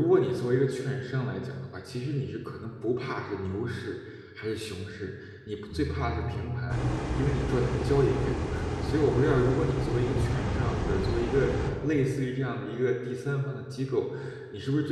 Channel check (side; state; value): both; identical; correlation 1.00